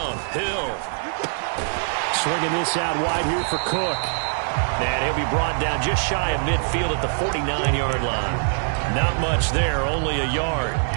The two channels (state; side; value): silent; left; digital silence